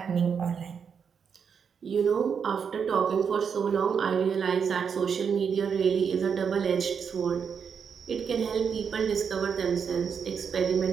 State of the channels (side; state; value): left; quieter; 6.7 dB